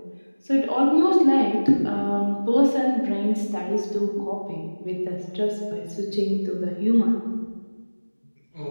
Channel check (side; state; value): both; inverted; correlation -1.00